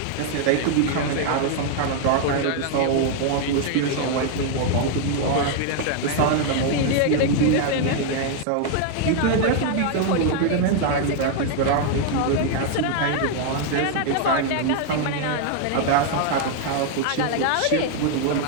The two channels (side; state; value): both; different; correlation 0.00